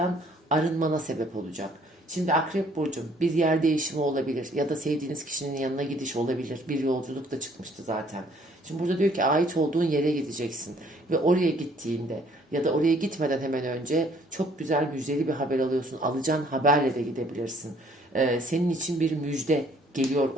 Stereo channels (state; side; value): normal; both; correlation 0.61